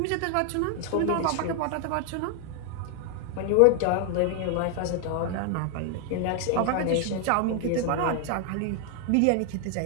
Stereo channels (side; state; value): both; different; correlation 0.00